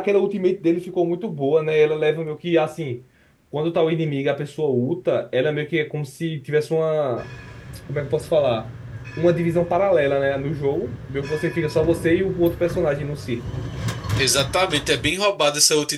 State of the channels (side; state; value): both; identical; correlation 1.00